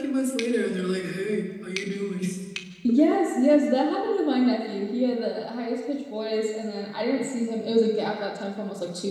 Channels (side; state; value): both; identical; correlation 1.00